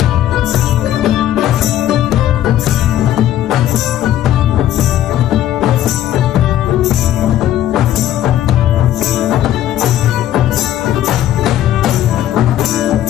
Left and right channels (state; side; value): quieter; right; 12.2 dB